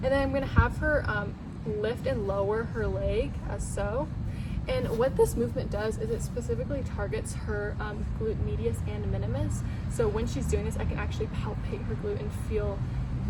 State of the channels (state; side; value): identical; both; correlation 1.00